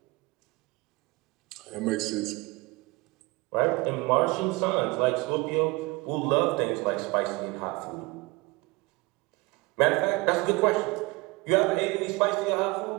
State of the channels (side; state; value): left; quieter; 24.4 dB